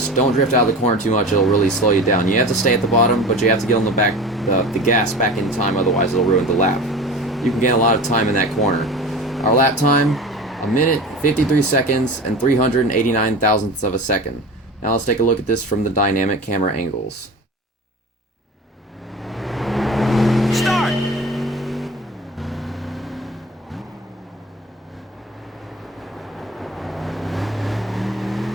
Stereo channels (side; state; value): both; normal; correlation 0.35